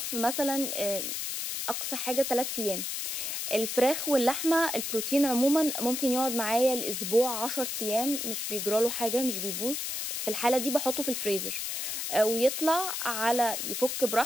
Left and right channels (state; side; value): noise; left; hiss, 3 dB below the sound